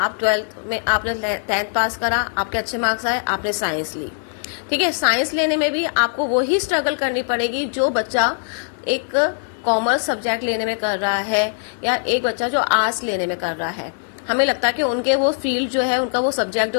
12th में आपने 10th पास करा, आपके अच्छे मार्क्स आए, आपने साइंस ली, ठीक है। साइंस लेने में भी आपको वही स्ट्रगल करनी पड़ेगी जो बच्चा एक कॉमर्स सब्जेक्ट लेने में कर रहा है या एक बच्चा जो आर्ट्स लेने में कर रहा है। हमें लगता है कि उनके वो फील्ड जो है, उनका वो सब्जेक्ट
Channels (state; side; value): silent; right; digital silence